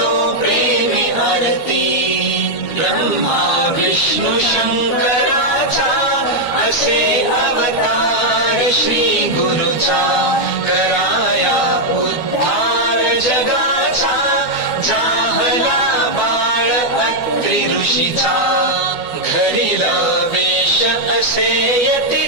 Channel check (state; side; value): late; right; 12 ms